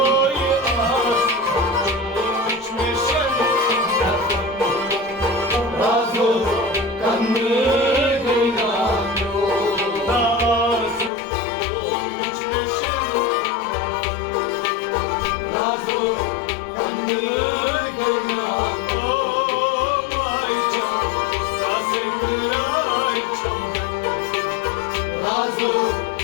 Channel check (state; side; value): drops out; right; at 11.1 s